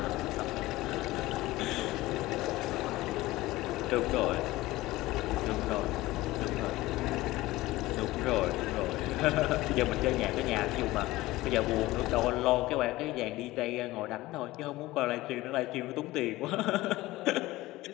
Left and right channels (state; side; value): quieter; right; 18.3 dB